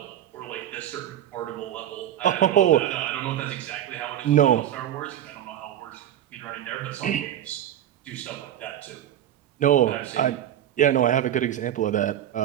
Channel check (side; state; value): left; quieter; 11.3 dB